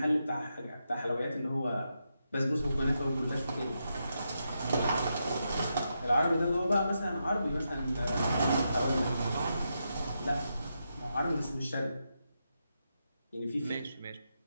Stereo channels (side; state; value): both; inverted; correlation -0.84